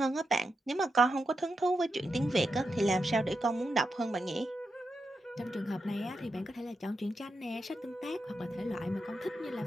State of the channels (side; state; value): both; normal; correlation 0.86